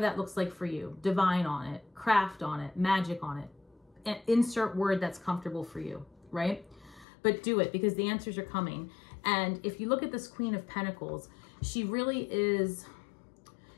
that looks like for you. Divine on it, craft on it, magic on it. And insert word that's comfortable for you, right? But do it, because the answers are coming. And if you look at this Queen of Pentacles, she really is,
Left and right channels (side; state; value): right; drops out; at 7.1 s